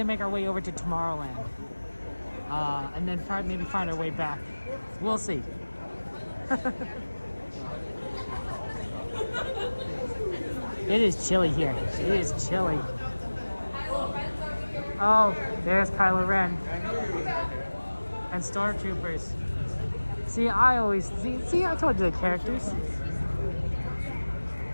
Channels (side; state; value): both; inverted; correlation -1.00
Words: make our way over to Tomorrowland. And then maybe find our way back. We'll see. It is chilly here. It is chilly. Oh, there's Kylo Ren. And Stormtroopers. See, I told you the characters.